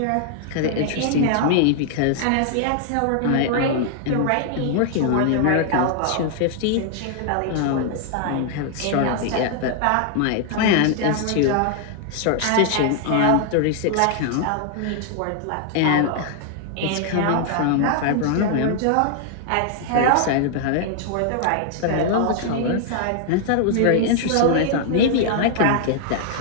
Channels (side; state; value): both; different; correlation 0.00